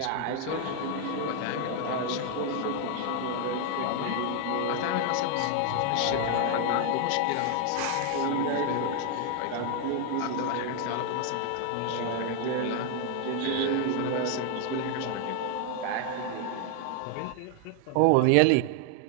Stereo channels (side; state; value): both; different; correlation 0.00